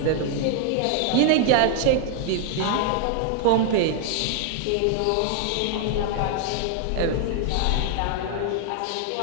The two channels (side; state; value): both; different; correlation -0.01